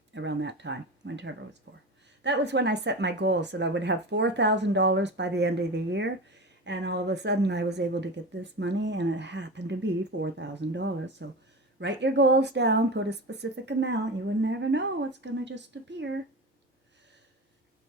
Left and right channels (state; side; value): normal; both; correlation 0.27